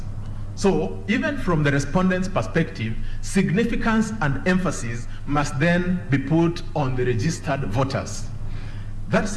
So even from the respondent's perspective, significance and emphasis must then be put on the registered voters. That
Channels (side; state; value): both; identical; correlation 1.00